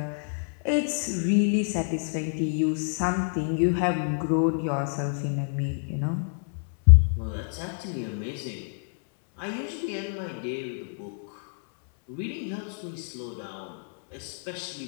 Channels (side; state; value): right; silent; 60 dB below the other